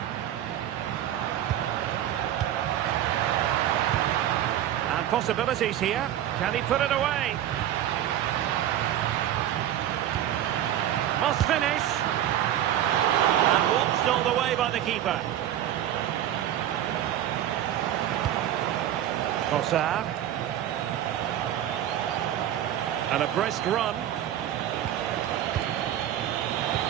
And possibilities here. Can he put it away? Must finish. And watched all the way by the keeper. Trossard. And a brisk run.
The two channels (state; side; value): quieter; left; 11.5 dB